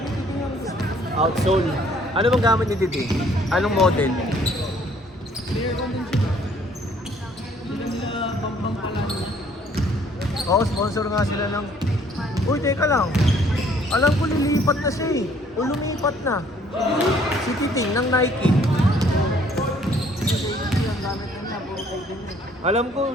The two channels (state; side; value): normal; both; correlation 0.61